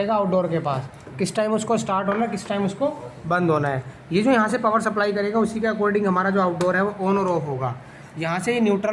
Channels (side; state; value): both; identical; correlation 1.00